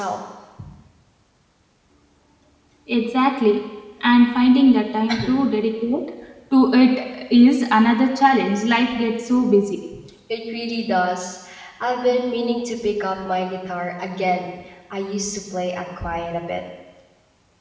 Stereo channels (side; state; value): both; identical; correlation 1.00